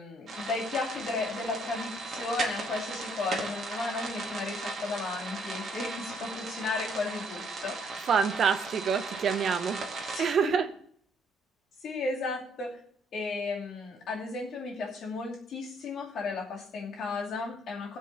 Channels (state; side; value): normal; both; correlation 0.67